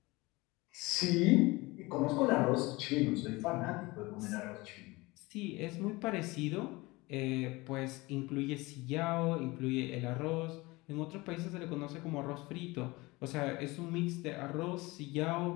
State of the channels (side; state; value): right; quieter; 22.5 dB